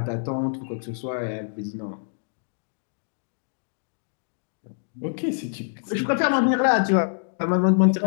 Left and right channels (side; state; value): right; silent; digital silence